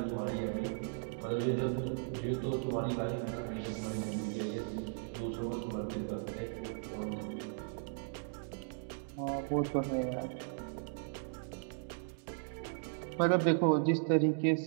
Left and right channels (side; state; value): left; silent; digital silence